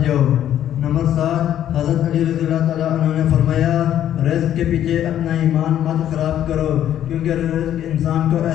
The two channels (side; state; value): right; quieter; 11.0 dB